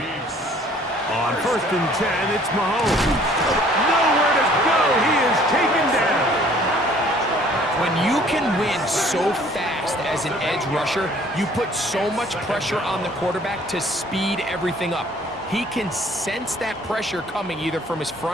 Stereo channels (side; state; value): both; normal; correlation 0.56